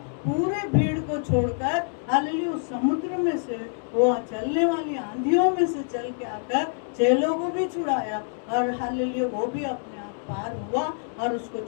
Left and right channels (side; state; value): right; silent; 61 dB below the other